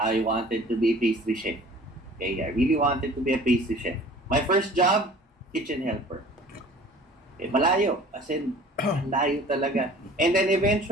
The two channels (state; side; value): normal; both; correlation 0.47